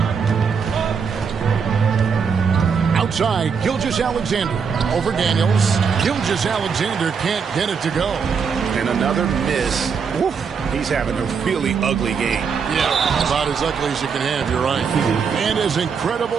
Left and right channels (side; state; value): left; quieter; 6.1 dB